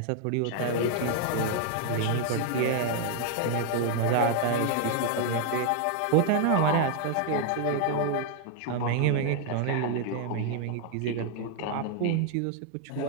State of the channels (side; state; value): both; different; correlation 0.00